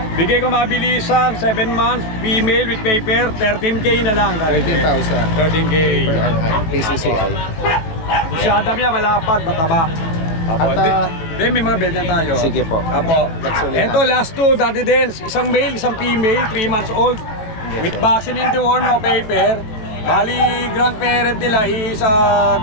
Bigay ko mabilisan, 7 months, female with paper, 13K na lang, Daddy Dens. 13,000 13K. per PCCI. Masyada niya, malapad, mataba. Opo, At Then may mga belt na tayo. Sige po. Apo. Nagsulit Ito, na. last two, Daddy Dance. Isang male, isang female, 3 months old. With vaccine in the worm, no paper. Bali, grandparent nila is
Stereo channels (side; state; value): right; late; 18 ms